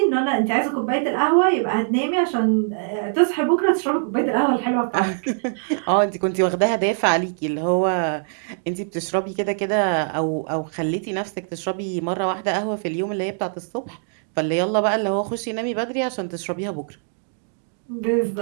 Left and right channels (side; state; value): left; silent; digital silence